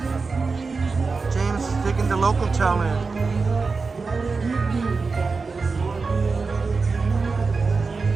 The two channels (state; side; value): quieter; left; 4.4 dB